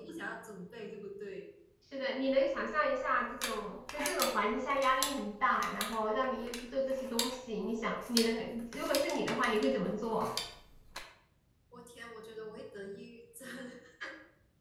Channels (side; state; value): both; identical; correlation 1.00